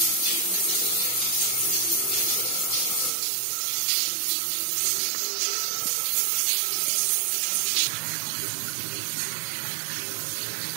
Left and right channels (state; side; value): drops out; left; at 3.1 s